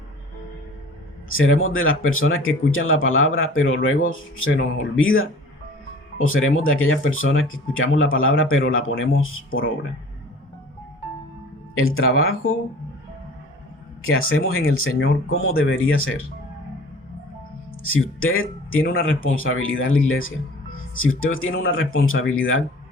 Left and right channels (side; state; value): both; normal; correlation 0.45